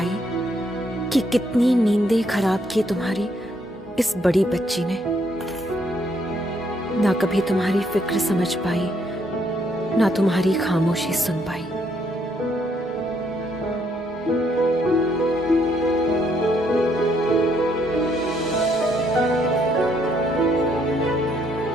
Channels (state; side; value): normal; both; correlation 0.71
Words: कि कितनी नींदें खराब की तुम्हारी इस बड़ी बच्ची ने। ना कभी तुम्हारी फिक्र समझ पाई, ना तुम्हारी खामोशी सुन पाई।